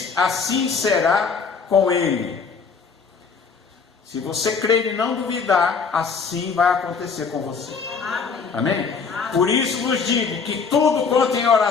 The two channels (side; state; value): right; quieter; 5.4 dB